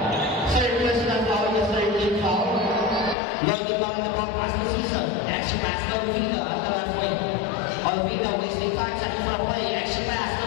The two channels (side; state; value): right; drops out; at 3.2 s